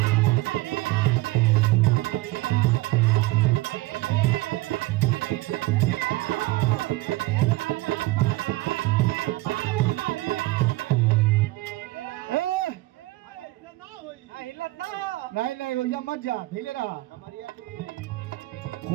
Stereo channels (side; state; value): left; quieter; 19.3 dB